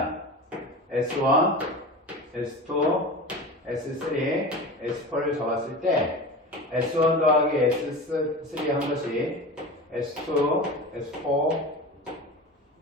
S1, S2, S3, S4를 잡았을 때 S1 더하기 S3 한 것이 S2, S4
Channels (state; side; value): normal; both; correlation 0.31